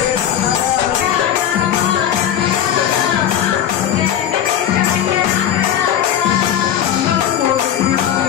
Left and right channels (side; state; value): right; quieter; 10.4 dB